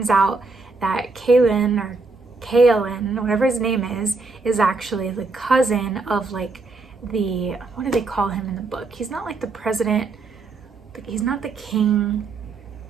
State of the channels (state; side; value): quieter; left; 3.8 dB